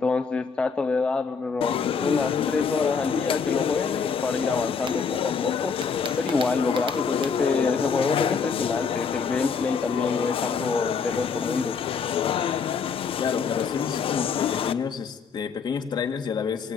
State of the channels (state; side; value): quieter; right; 5.7 dB